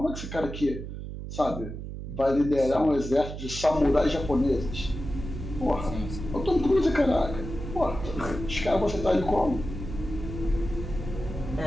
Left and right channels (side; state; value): right; noise; hum, 8 dB below the sound